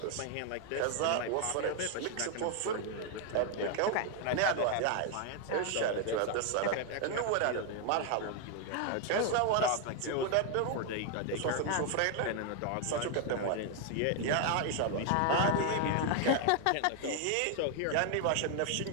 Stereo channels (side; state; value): both; different; correlation 0.00